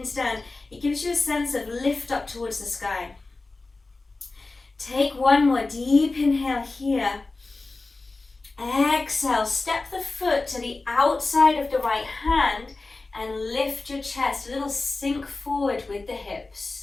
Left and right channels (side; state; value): right; quieter; 3.4 dB